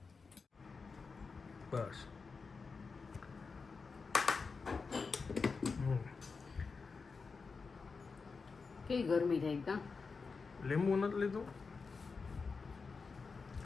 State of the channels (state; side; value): quieter; right; 4.7 dB